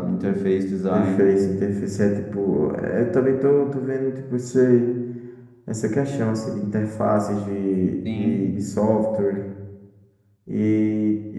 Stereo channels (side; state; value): both; identical; correlation 1.00